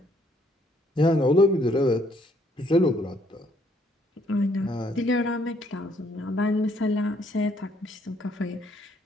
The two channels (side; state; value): both; normal; correlation 0.67